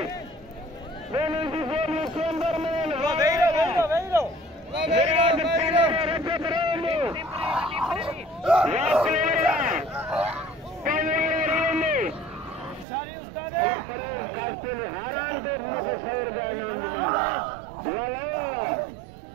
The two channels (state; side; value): drops out; left; at 12.9 s